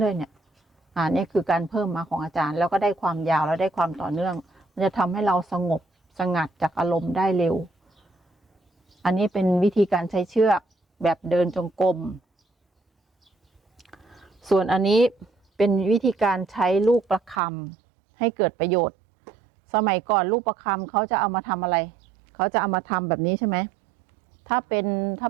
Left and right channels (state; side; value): drops out; left; at 17.4 s